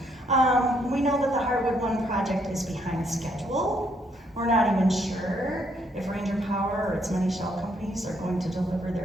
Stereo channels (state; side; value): normal; both; correlation 0.71